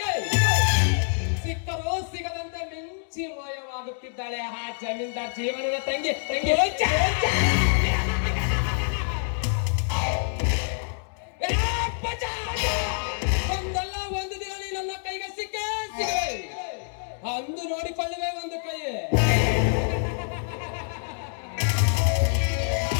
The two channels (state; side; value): silent; right; digital silence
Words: ಸಿಕ್ಕರೂ ಸಿಗದಂತೆ ಮಿಂಚಿ ಮಾಯವಾಗುತ್ತಿದ್ದಾಳೆ ಆ ಜಮೀನ್ದಾರ್ ಜೀವನದ ತಂಗಿ ಒಂದಲ್ಲ ಒಂದು ದಿನ ನನ್ನ ಕೈಗೆ ಸಿಕ್ಕೇ ಅಂದು ನೋಡಿಕೊಳ್ಳುವೆ ಒಂದು ಕೈ